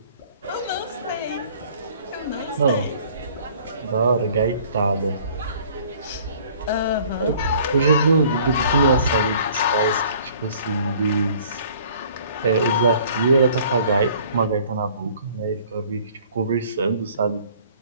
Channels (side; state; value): both; inverted; correlation -0.54